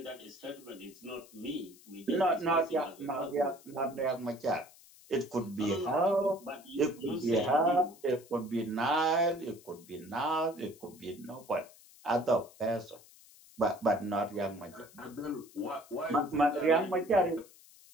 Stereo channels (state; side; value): noise; left; hiss, 23 dB below the sound